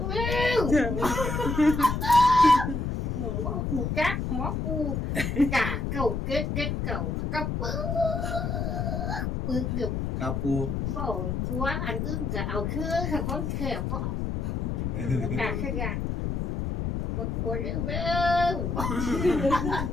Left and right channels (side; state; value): left; noise; rumble, 1 dB below the sound